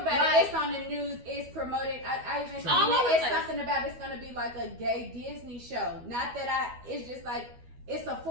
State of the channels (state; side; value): late; left; 12 ms